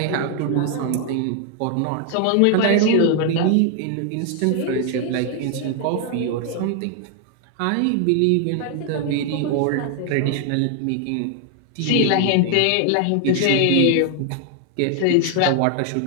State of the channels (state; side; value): different; both; correlation 0.00